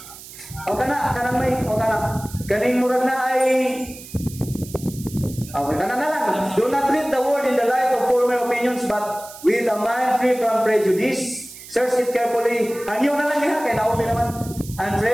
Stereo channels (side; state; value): right; noise; hiss, 16 dB below the sound